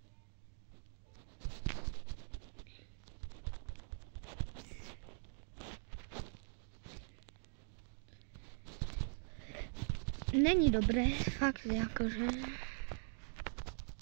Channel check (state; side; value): silent; left; digital silence